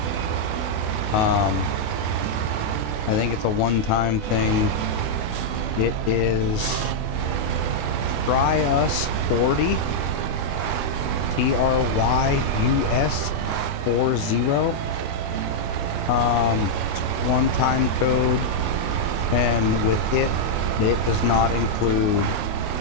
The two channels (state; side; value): late; right; 28 ms